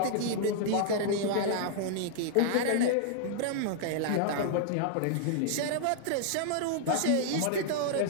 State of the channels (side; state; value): both; different; correlation -0.01